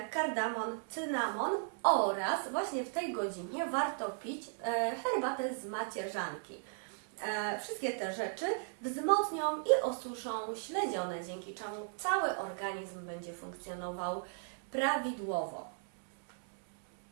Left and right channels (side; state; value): left; silent; 54 dB below the other